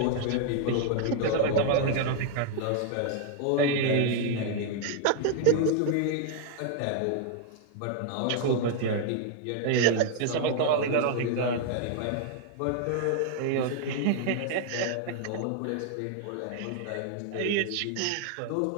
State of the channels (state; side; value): different; both; correlation 0.00